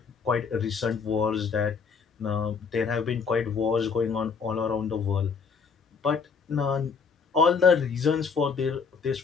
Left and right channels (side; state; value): right; quieter; 5.6 dB